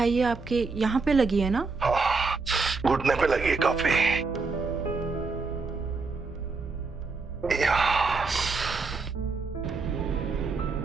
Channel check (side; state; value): left; quieter; 4.2 dB